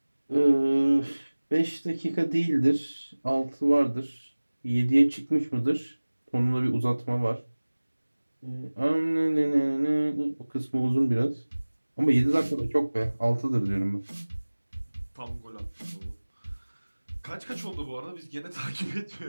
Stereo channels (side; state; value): both; inverted; correlation -1.00